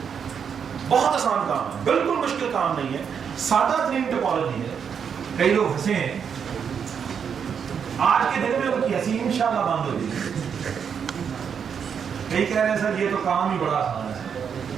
बहुत आसान काम है, बिल्कुल मुश्किल काम नहीं है, सादा तरीन टोपोलॉजी है। कई लोग हंसे हैं, आज के दिन में उनकी हंसी इंशाल्लाह बंद हो जाएगी। कई कह रहे हैं सर ये तो काम ही बड़ा आसान है।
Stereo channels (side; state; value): left; quieter; 7.2 dB